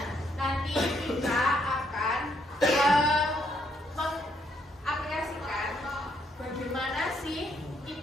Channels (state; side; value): normal; both; correlation 0.73